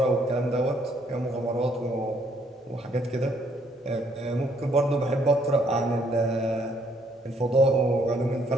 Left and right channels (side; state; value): both; normal; correlation 0.68